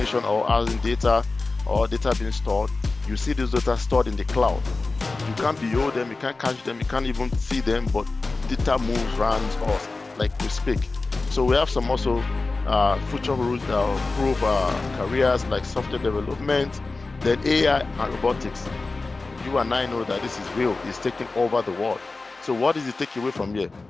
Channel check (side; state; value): right; quieter; 3.6 dB